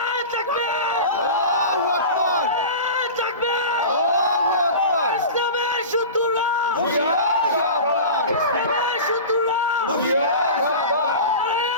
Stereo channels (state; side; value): inverted; both; correlation -0.32